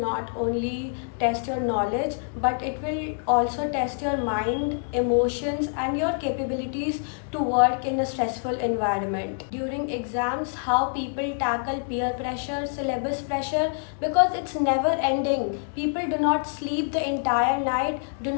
only test your knowledge, but it will also test your mind, emotions and your capabilities to work in a stressful environment. During exams, how people tackle peer pressure, syllabus pressure, because it's never ending. People do not sleep the entire night, do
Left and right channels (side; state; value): right; silent; digital silence